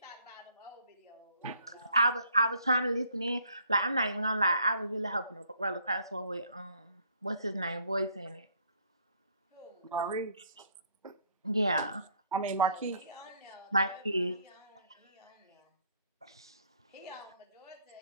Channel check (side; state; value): both; inverted; correlation -0.64